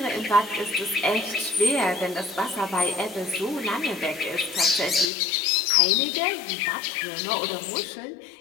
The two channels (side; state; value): right; drops out; at 5.1 s